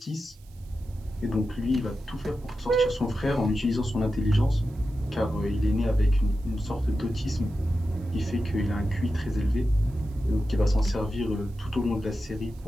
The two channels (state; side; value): noise; right; hiss, 29 dB below the sound